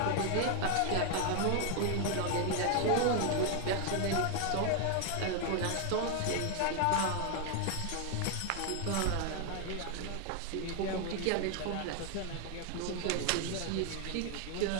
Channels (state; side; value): different; both; correlation 0.00